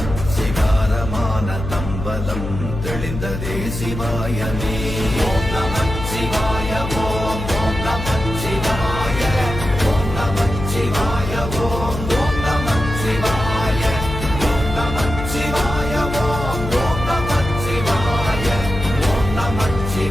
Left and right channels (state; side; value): noise; left; hum, 6 dB below the sound